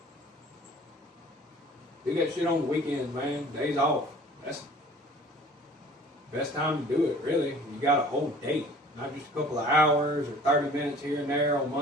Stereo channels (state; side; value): normal; both; correlation 0.48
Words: Do that shit on the weekends, man. Days off. That's the best time to do it, really. You got a whole day, not just a couple of hours or 30 minutes here and there on